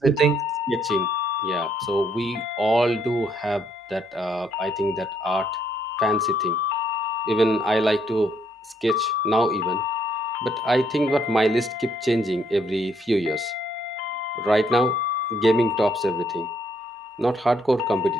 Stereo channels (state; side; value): normal; both; correlation 0.71